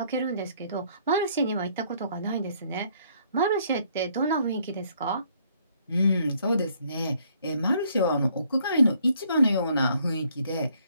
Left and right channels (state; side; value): inverted; both; correlation -0.65